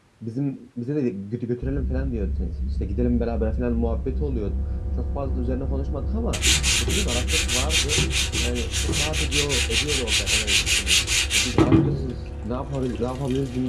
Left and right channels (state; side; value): identical; both; correlation 1.00